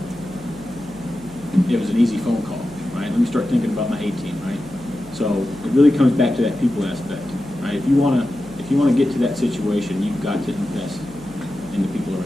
it was an easy phone call, right? Let me start thinking about my A-team, right? So it really comes back to that people aspect, right? If you want to get to that situation, you've got to invest in the people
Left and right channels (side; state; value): right; noise; hum, 19 dB below the sound